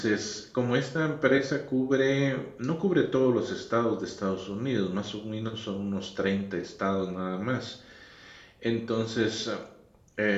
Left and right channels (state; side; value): identical; both; correlation 1.00